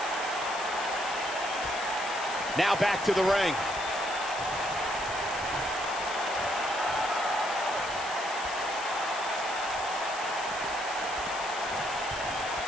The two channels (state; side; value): noise; left; hiss, 11 dB below the sound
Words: Now back to the ring.